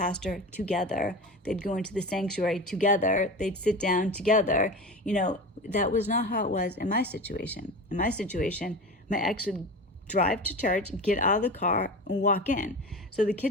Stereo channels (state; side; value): normal; both; correlation 0.29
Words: together. They'd go into the sanctuary together. They'd sit down together. That was not how it was in my situation. In my situation, my ex would drive to church, get out of the car, and walk in. So the